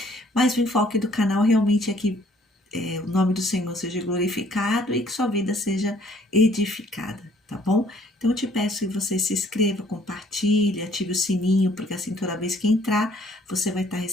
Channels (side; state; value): both; normal; correlation 0.61